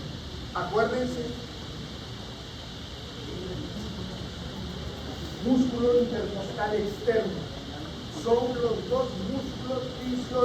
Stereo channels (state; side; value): identical; both; correlation 1.00